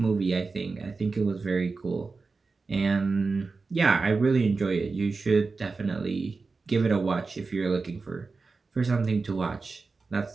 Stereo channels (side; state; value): left; quieter; 4.2 dB